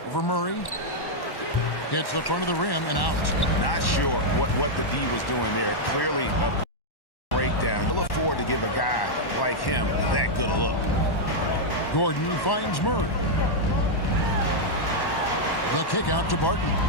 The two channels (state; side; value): late; right; 1.1 ms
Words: Over Murray. Hits the front of the rim and out. Not sure what the D was doing there. Clearly a breakdown. You look forward to give a guy like him that good a look. Gordon finds Murray. The kick out to Barton.